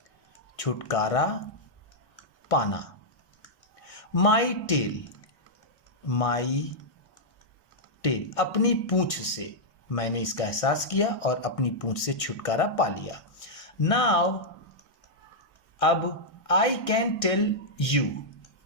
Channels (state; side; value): late; right; 1.6 ms